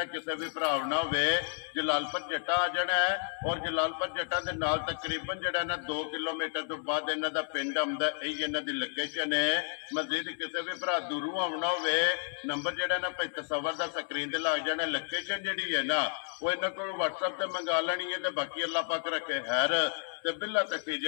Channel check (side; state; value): right; silent; 57 dB below the other